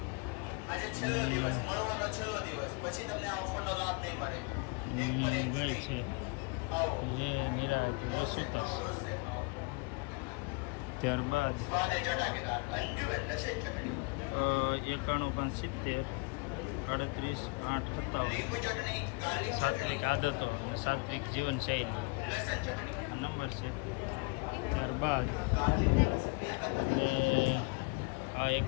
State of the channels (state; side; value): quieter; right; 30.5 dB